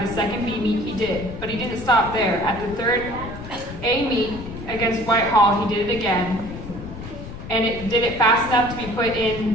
second B meet he did, but he didn't stop there. At the third A meet against Whitehall, he did it again, and it did it fast enough to be put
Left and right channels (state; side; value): noise; left; rumble, 11 dB below the sound